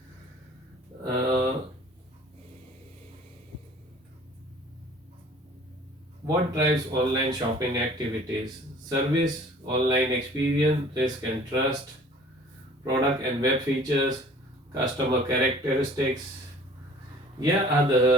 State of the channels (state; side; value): normal; both; correlation 0.50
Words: Uh, what drives online shopping activities? Service, online experience, risk and trust, product and web features, customer characteristics, Here are